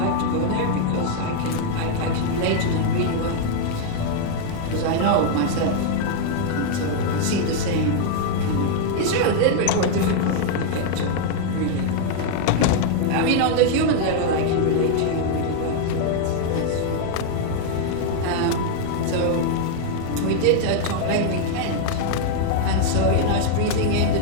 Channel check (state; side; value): different; both; correlation -0.01